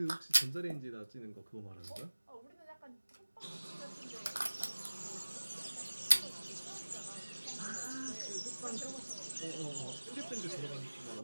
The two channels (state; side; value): inverted; both; correlation -1.00